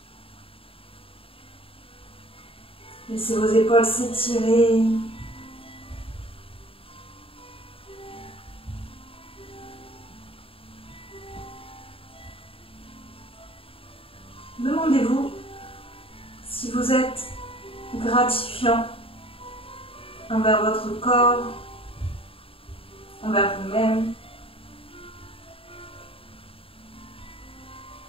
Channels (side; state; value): right; late; 0.27 ms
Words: Laissez vos épaules s'étirer. Demandez-vous si vous êtes gratifiant envers votre corps, envers vous-même.